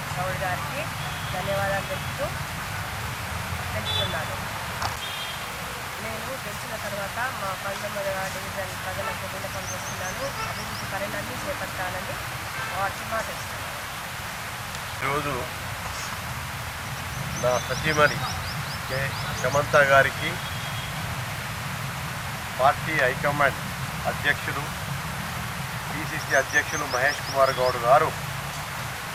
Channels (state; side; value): identical; both; correlation 1.00